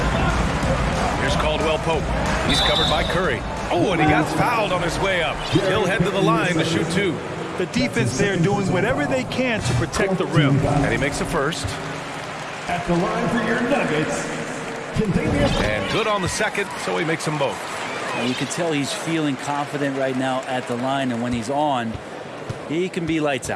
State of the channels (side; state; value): both; identical; correlation 1.00